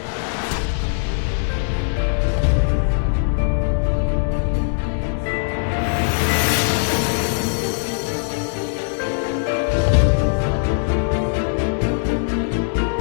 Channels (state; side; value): silent; right; 65 dB below the other